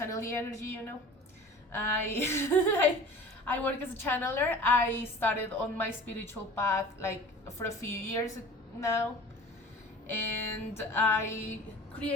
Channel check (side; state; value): both; normal; correlation 0.41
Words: the energy, I I work as a channeler. I started on my spiritual path like for a few years now, and I